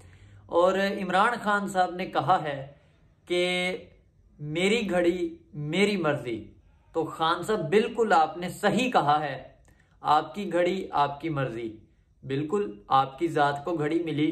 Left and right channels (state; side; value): identical; both; correlation 1.00